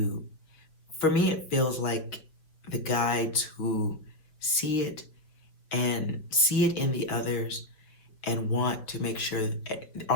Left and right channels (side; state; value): right; late; 5.7 ms